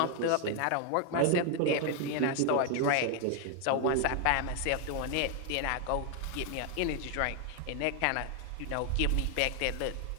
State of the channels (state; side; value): different; both; correlation 0.01